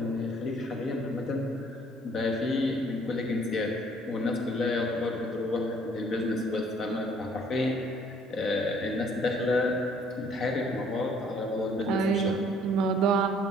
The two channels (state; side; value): normal; both; correlation 0.60